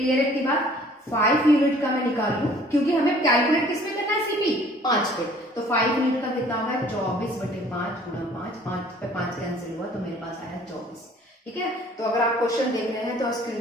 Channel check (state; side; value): normal; both; correlation 0.54